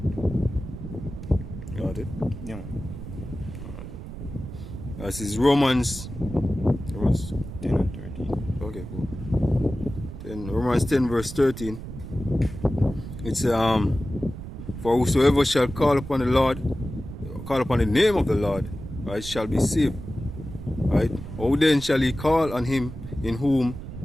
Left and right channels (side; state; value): right; noise; rumble, 10 dB below the sound